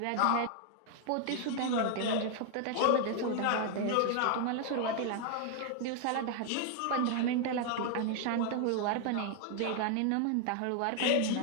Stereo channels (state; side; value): different; both; correlation 0.00